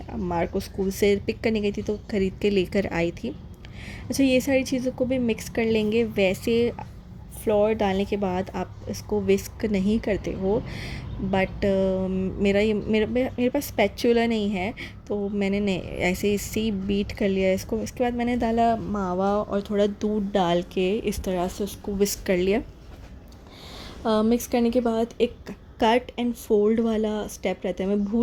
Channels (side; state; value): both; identical; correlation 1.00